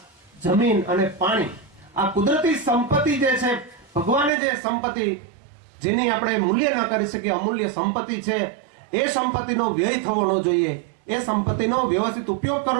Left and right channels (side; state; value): left; drops out; at 4.3 s